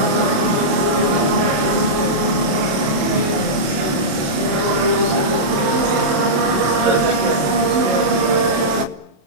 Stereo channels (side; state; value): left; late; 27 ms